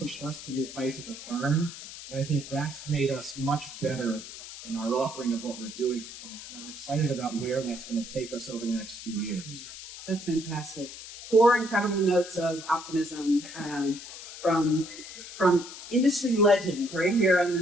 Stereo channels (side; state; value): left; noise; hiss, 13 dB below the sound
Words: us to new heights as a firm. And I think that's made us much better in our offering of what we're doing. And I'm excited about where that's going to take us over the next few years. That's fantastic. 4 incredible notes of optimism from industry legends right here on